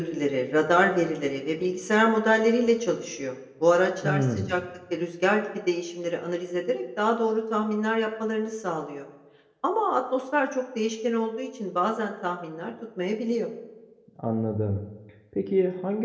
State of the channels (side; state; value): both; identical; correlation 1.00